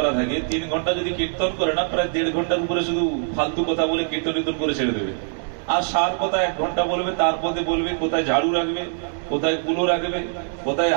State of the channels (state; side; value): silent; left; digital silence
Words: থাকে, 3 ঘন্টা যদি কীর্তন করে না, প্রায় 1.5 ঘন্টার উপরে শুধু ফালতু কথা বলে কীর্তন করে ছেড়ে দেবে। আর সার কথা 1 ঘন্টা বলবে, তারপরে বলবে কোথায় ঝাড়ু রাখবে, কোথায় কুলো রাখবে, কোথায়